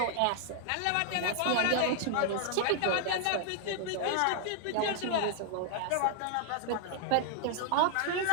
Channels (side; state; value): both; different; correlation 0.00